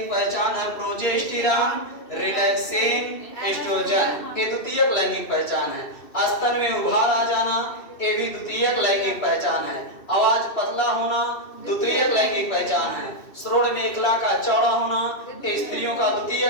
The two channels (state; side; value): late; right; 2.6 ms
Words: पहचान है प्रोजेस्टेरॉन, रिलैक्सिन, एस्ट्रोजन, ये द्वितीयक लैंगिक पहचान है। स्तन में उभार आ जाना, ये भी द्वितीयक लैंगिक पहचान है। आवाज पतला होना द्वितीयक लैंगिक पहचान है। श्रोण मेखला का चौड़ा होना स्त्रियों का